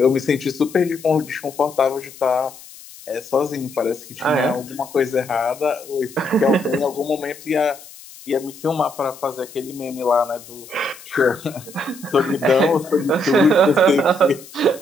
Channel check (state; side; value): noise; left; hiss, 19 dB below the sound